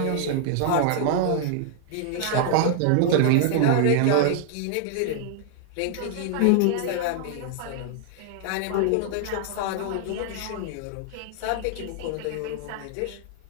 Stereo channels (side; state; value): both; different; correlation 0.00